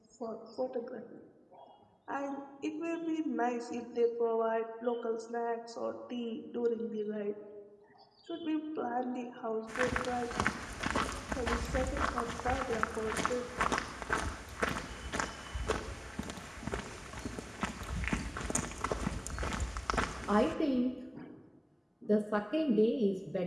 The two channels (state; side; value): identical; both; correlation 1.00